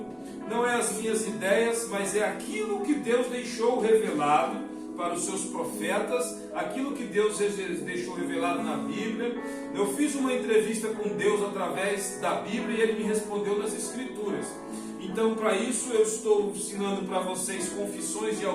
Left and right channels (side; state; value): both; identical; correlation 1.00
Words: não é as minhas ideias, mas é aquilo que Deus deixou revelado para os seus profetas, aquilo que Deus deixou revelado na Bíblia. Eu fiz uma entrevista com Deus através da Bíblia e Ele me respondeu nas Escrituras. Então, para isso, eu estou ensinando para vocês Confissões de